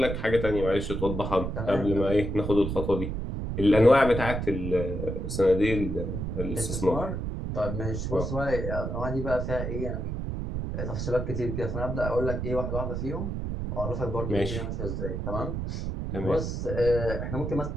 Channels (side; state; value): right; noise; rumble, 3 dB below the sound